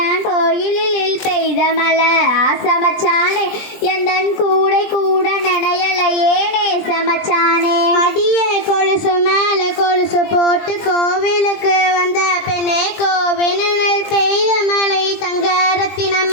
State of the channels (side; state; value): right; late; 20 ms